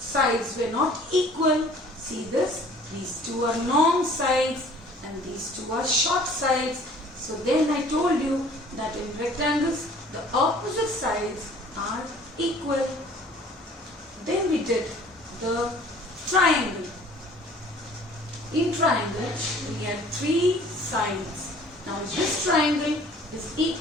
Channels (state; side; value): normal; both; correlation 0.51